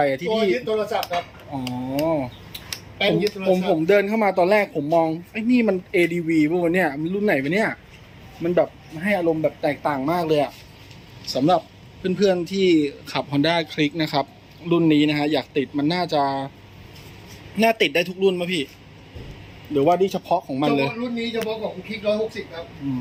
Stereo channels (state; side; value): identical; both; correlation 1.00